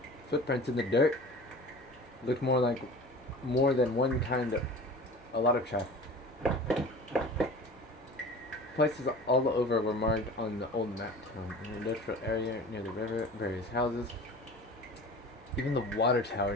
Footprints in the dirt. Looked more like more than one kind of... a lot of traffic. Places all over were marked on the old map town. An industrial area near the river, various houses. Even the water tower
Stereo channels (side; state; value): both; normal; correlation 0.40